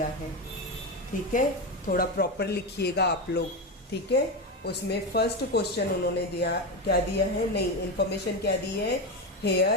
है। ठीक है, थोड़ा प्रॉपर लिखिएगा आप लोग। ठीक है, उसमें फर्स्ट क्वेश्चन उन्होंने दिया, क्या दिया है, नहीं इंफॉर्मेशन क्या दी है,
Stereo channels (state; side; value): normal; both; correlation 0.15